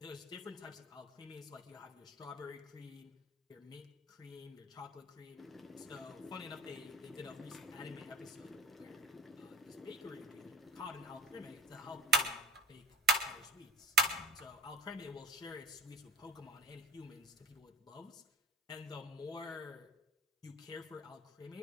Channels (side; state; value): both; normal; correlation 0.42